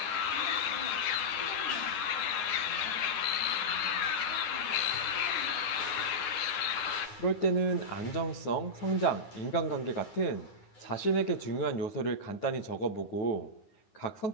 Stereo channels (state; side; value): late; right; 9.7 ms